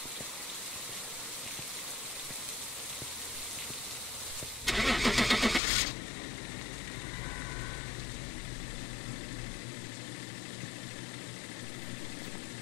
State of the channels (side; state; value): right; drops out; at 5.6 s